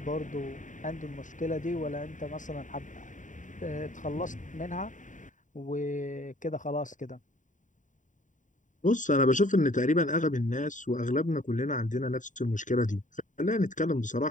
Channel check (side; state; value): right; late; 0.37 ms